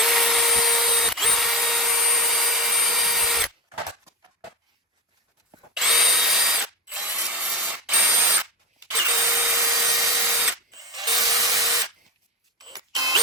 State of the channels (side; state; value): both; normal; correlation 0.18